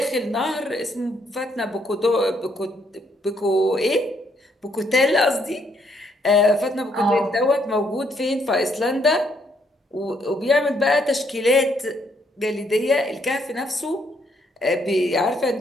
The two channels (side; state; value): both; normal; correlation 0.71